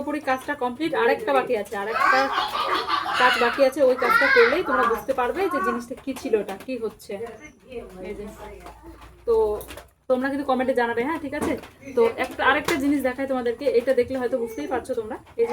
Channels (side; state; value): both; identical; correlation 1.00